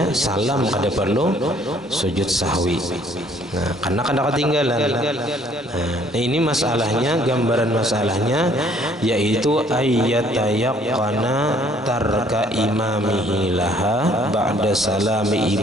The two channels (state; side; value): normal; both; correlation 0.61